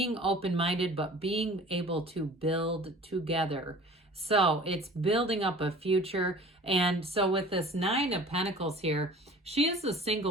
open-minded, but being able to build together. So it's building up a future. And so with this Nine of Pentacles here, she is a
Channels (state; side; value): normal; both; correlation 0.45